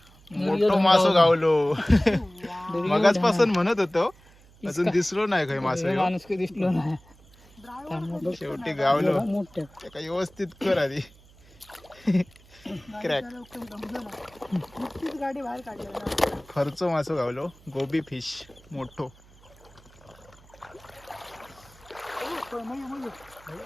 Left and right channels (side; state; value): right; noise; hum, 26 dB below the sound